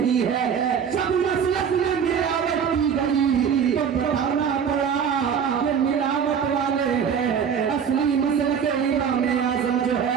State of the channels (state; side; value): quieter; left; 7.3 dB